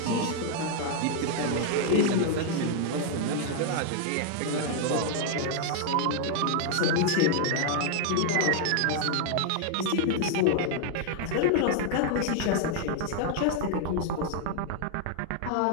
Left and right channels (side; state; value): both; different; correlation 0.00